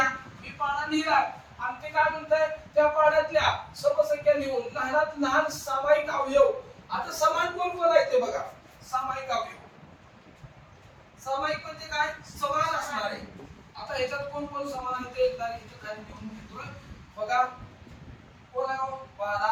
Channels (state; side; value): identical; both; correlation 1.00